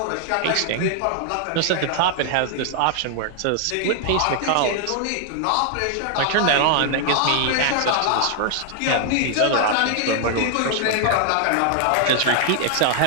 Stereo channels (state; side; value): different; both; correlation 0.00